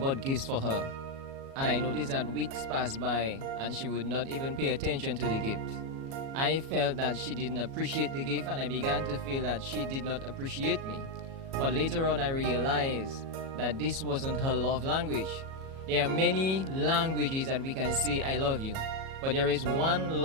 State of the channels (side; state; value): left; late; 37 ms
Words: gifts for her. And I noticed that weeks passed by and she would not even pay attention to the gift. I felt that she didn't appreciate the gift, and I began to feel that she did not appreciate me. But later on I realized that this wasn't her love language. There are many languages that we can say I love you, but there is one